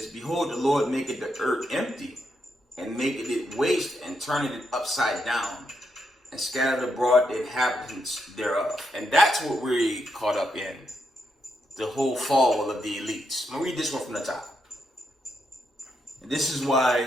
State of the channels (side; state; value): both; normal; correlation 0.81